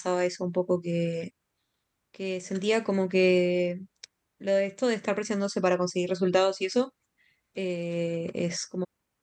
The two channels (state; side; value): identical; both; correlation 1.00